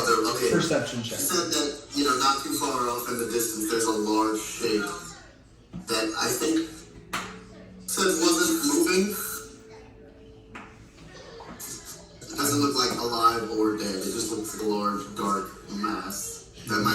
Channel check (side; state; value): both; identical; correlation 1.00